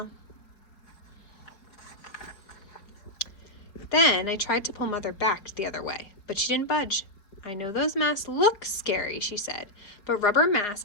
Then I tried to pull Mother back the other way, but she didn't budge. I know those masks look scary, she said, but rubber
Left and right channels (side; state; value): right; late; 4.6 ms